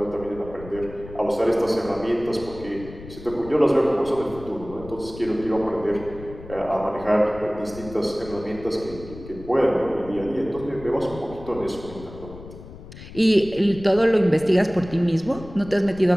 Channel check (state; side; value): noise; left; rumble, 15 dB below the sound